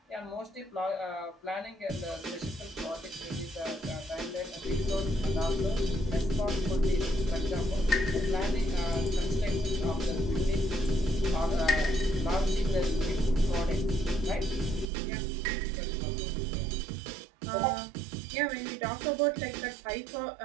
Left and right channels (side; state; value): left; drops out; at 14.9 s